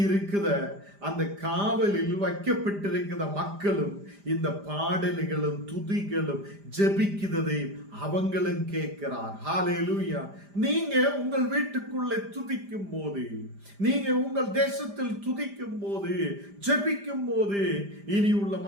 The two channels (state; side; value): late; left; 5.0 ms